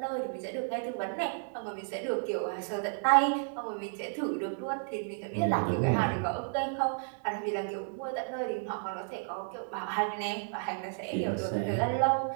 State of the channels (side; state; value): left; silent; digital silence